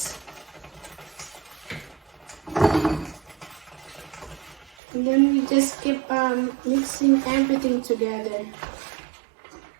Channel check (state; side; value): drops out; left; at 4.7 s